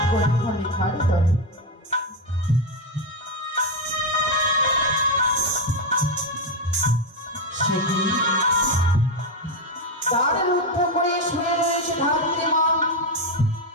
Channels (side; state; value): both; normal; correlation 0.07